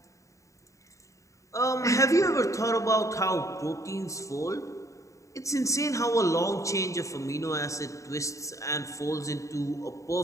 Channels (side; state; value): right; late; 0.15 ms